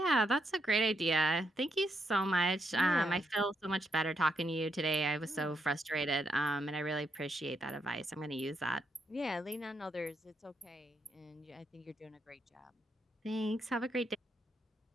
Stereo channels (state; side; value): normal; both; correlation 0.79